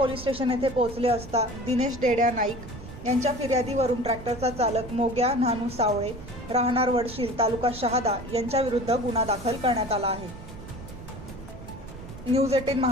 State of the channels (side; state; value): right; noise; rumble, 14 dB below the sound